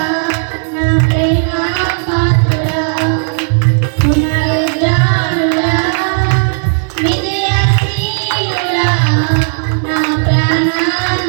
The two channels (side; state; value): left; silent; digital silence